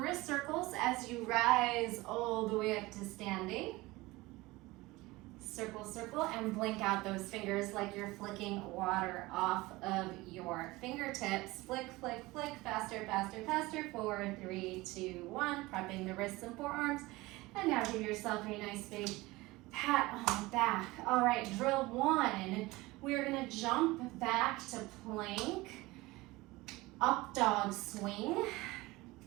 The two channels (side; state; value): left; quieter; 20.7 dB